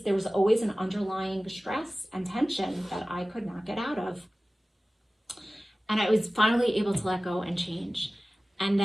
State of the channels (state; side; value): normal; both; correlation 0.97